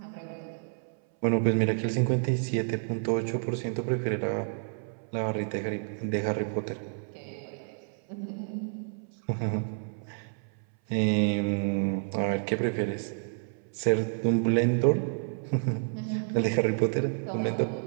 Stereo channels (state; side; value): silent; left; 58 dB below the other